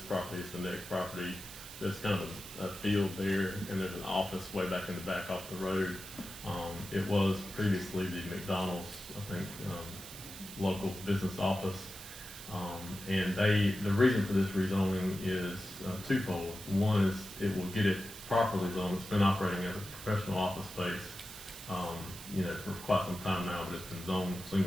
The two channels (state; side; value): noise; right; hiss, 14 dB below the sound